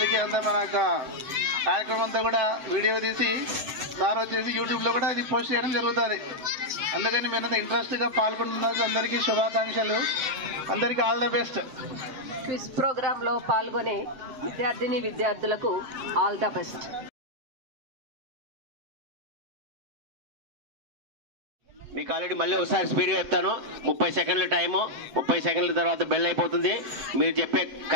అంతా మన యొక్క కార్యక్రమం అంతా కూడా వీడియో తీసి సార్ వచ్చేసి యూట్యూబ్లో కూడా ఇది పోస్ట్ చేయడం జరుగుతుంది. అందుకని మీరంతా ఇంట్రెస్ట్గా పాల్గొంటున్నారు. అందరికీ శుభాకాంక్షలు. అందరికీ ఆల్ ద బెస్ట్. క్విజ్ ప్రోగ్రాంలో పాల్గొనే విద్యార్థులకు ఆల్ ద బెస్ట్. మీకు ఆల్రెడీ మళ్ళీ ఒకసారి స్పీడ్గా చెప్తాను. 30 సెకండ్ల టైము. 30 సెకండ్ల తర్వాత బెల్ అయిపోతుంది. మీరు చెప్పే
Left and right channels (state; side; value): late; left; 7.8 ms